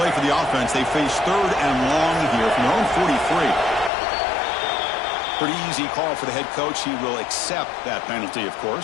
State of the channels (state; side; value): drops out; right; at 3.9 s